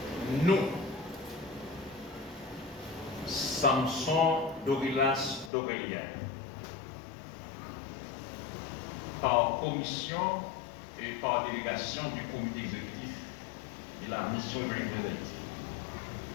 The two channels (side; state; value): right; drops out; at 5.5 s